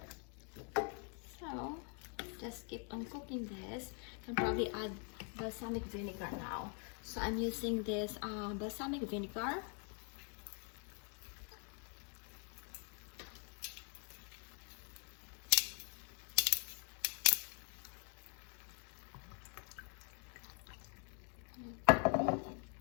So just keep on cooking this. Can probably add balsamic vinegar now. So I'm using this balsamic vinegar.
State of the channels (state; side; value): quieter; right; 39.3 dB